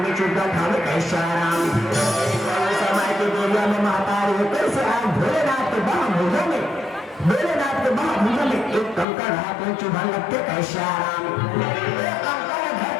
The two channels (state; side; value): drops out; right; at 9.1 s